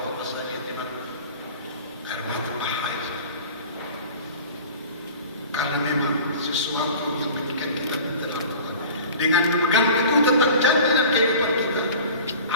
saya lihat di mana air mata bahaya. Karena memang sesuatu yang mengikat kita dalam Tuhan. Dengan memegang teguh tentang janji dan kehidupan kita,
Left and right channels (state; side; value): inverted; both; correlation -0.41